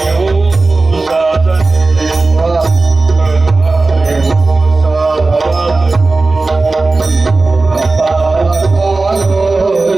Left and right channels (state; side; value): quieter; left; 3.5 dB